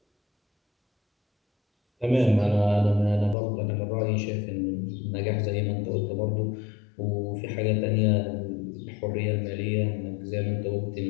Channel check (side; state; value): right; drops out; at 3.4 s